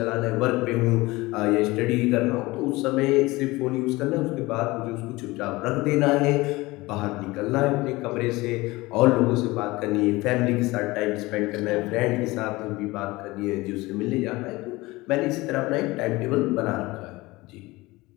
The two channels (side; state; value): right; quieter; 21.0 dB